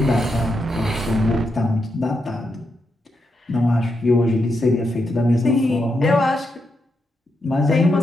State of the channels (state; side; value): normal; both; correlation 0.83